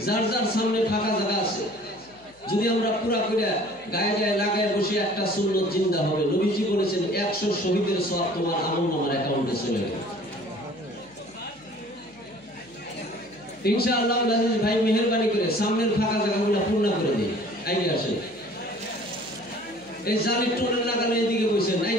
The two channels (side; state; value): left; noise; hum, 29 dB below the sound